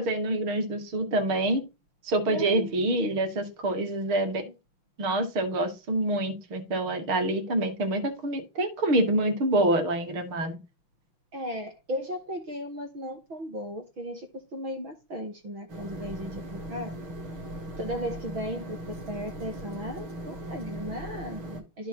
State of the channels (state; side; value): late; left; 6.4 ms